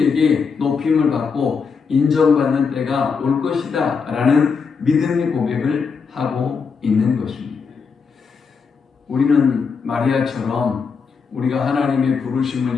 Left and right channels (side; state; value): right; quieter; 5.5 dB